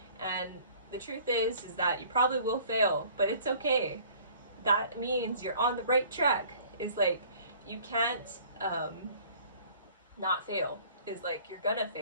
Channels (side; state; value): both; inverted; correlation -0.53